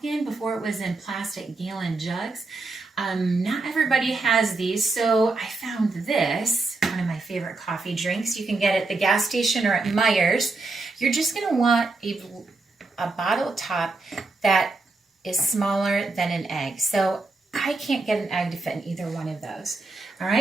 in before it was in plastic gallon jugs. Not everybody has these, so I found this, one of my favorite coffee drinks. You can get it at the gas station or at Meijer's. You're just going to want a bottle top that is smaller than an egg. So I can't get an egg to fit in either one of those. All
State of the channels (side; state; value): left; quieter; 3.5 dB